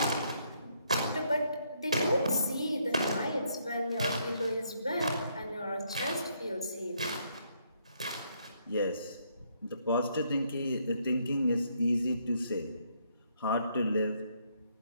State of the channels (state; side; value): inverted; both; correlation -0.72